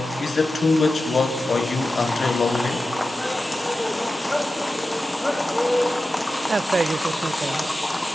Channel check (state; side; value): normal; both; correlation 0.93